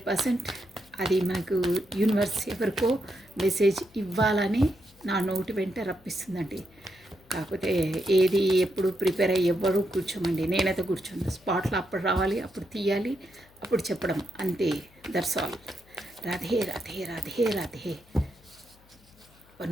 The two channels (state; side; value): noise; left; hum, 28 dB below the sound